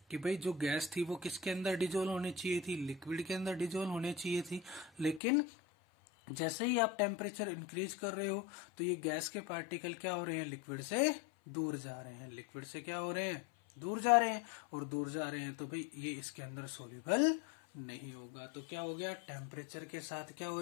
कि भाई जो गैस थी वो किसके अंदर डिजोल्व होनी चाहिए थी, लिक्विड के अंदर डिजोल्व होनी चाहिए थी। लेकिन जैसे ही आप टेम्परेचर इंक्रीज कर रहे हो तो ये गैस के पार्टिकल क्या हो रहे हैं, लिक्विड से दूर जा रहे हैं। लिक्विड से क्या हो रहे हैं, दूर जा रहे हैं, और दूर जा रहे हैं तो भाई ये इसके अंदर सोल्यूबल नहीं होगा। तो क्या हो गया, टेम्परेचर के साथ क्या हो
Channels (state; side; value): drops out; right; at 5.2 s